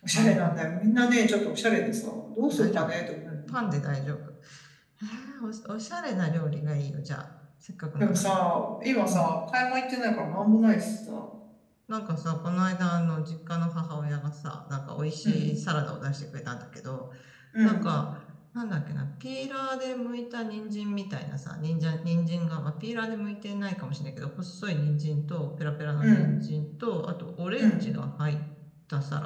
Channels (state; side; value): identical; both; correlation 1.00